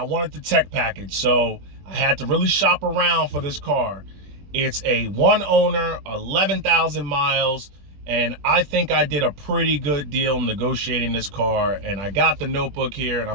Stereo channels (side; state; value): left; late; 20 ms